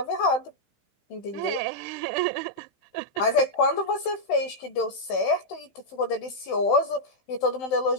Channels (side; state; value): right; late; 15 ms